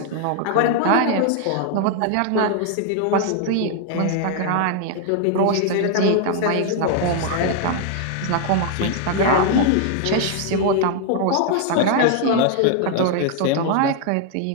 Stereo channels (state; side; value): different; both; correlation 0.00